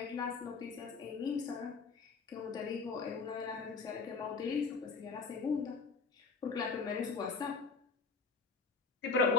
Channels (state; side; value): quieter; right; 4.6 dB